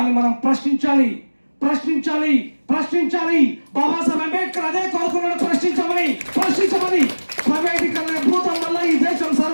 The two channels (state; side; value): inverted; both; correlation -1.00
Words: మనం ప్రశ్నించాలి, ప్రశ్నించాలి, ప్రశ్నించాలి. బాబాసాహెబ్ అంబేద్కర్ అదే కోరుకున్నాడు, ప్రశ్నించమని. ప్రైవేటీకరణ భూతం వల్ల ఈ దేశం